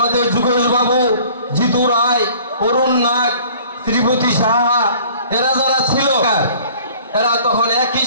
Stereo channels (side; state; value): both; inverted; correlation -0.50